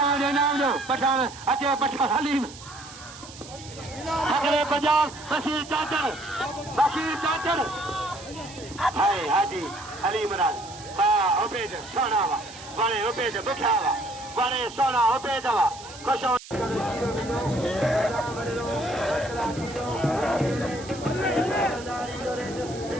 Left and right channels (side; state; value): right; noise; hiss, 16 dB below the sound